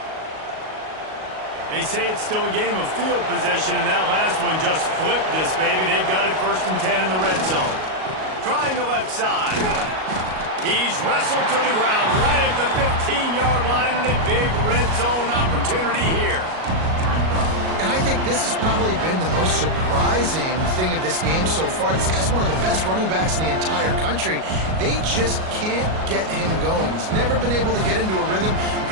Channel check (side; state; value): left; late; 38 ms